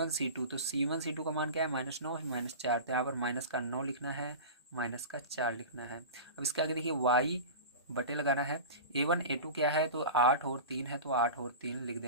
c2, तो c1 c2 का मान क्या है, -9 -4, तो यहाँ पर माइनस का 9 लिखना है, माइनस का 4 लिखना है। अब इसके आगे देखिए y बटे लगाना है, a1 a2 क्या है, तो 8 और 3 है, तो 8 और 3 लिख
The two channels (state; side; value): inverted; both; correlation -0.31